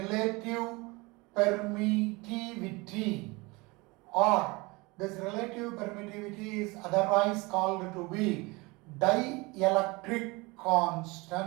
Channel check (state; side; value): quieter; left; 25.0 dB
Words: permittivity, or this relative permittivity is otherwise called to be dielectric